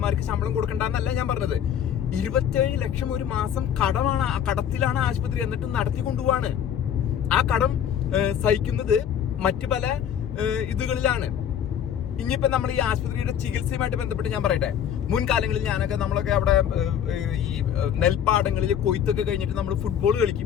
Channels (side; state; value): right; quieter; 9.2 dB